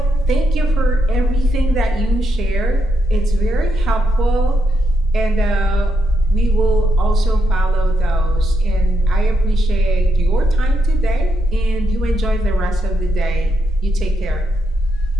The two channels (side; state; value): both; normal; correlation 0.80